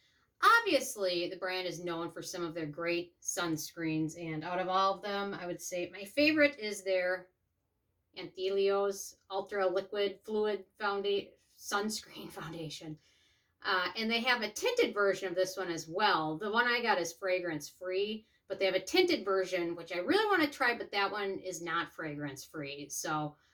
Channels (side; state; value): both; identical; correlation 1.00